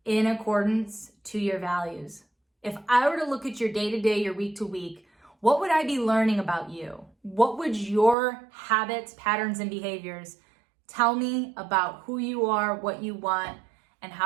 in accordance to your values? If I were to look at your day-to-day, your week-to-week, what would I be learning about you? What would your habits, patterns, and behaviors tell me about who you are, what you want, and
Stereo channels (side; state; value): left; drops out; at 8.2 s